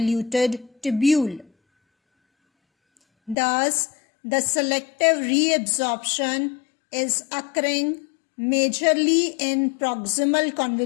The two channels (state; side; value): drops out; right; at 3.4 s